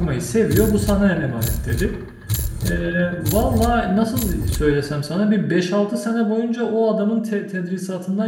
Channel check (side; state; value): both; identical; correlation 1.00